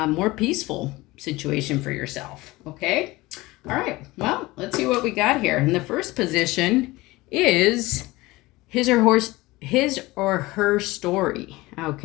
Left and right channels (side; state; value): right; quieter; 20.4 dB